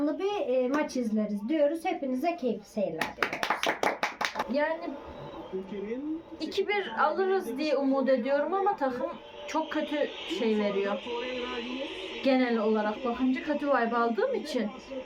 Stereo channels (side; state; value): both; identical; correlation 1.00